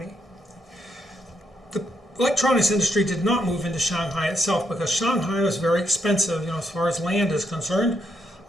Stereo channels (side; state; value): both; normal; correlation 0.78